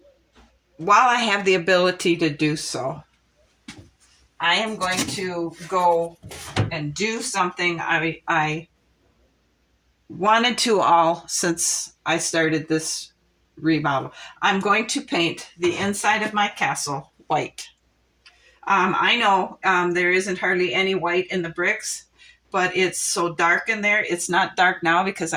I have the ability to do so, I am going to go and do something I wanted to all since I started this remodel. I'm going to paint the inside of my castle white. I know there isn't hardly any white in the bricks, but it's so dark in there. It's not dark now because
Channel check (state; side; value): identical; both; correlation 1.00